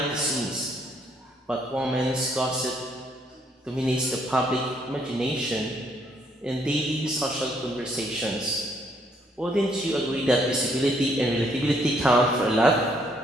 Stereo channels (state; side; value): normal; both; correlation 0.69